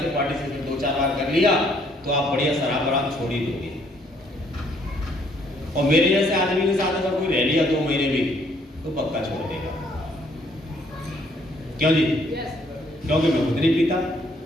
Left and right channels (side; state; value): both; normal; correlation 0.66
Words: पार्टिसिपेट 2-4 बार कर लिया तो आप बढ़िया शराब आराम छोड़ ही दोगे। और मेरे जैसे आदमी के साथ अगर कोई रह लिया 2 महीने भी तो पक्का छोड़ देगा। क्यों जी? क्योंकि मैं खुद नहीं पीता